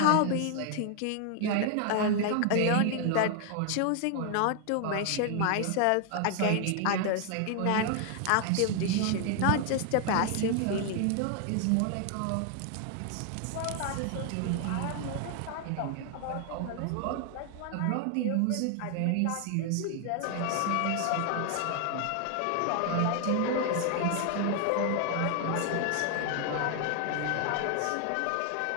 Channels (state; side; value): different; both; correlation 0.00